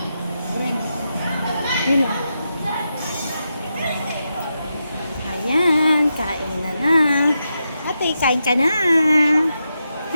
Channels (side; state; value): both; inverted; correlation -0.86